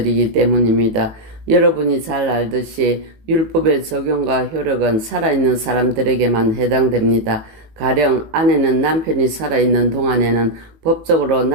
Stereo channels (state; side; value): late; left; 18 ms